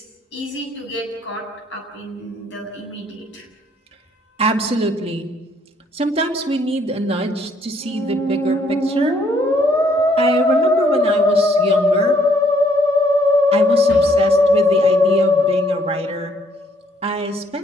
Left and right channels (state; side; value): normal; both; correlation 0.67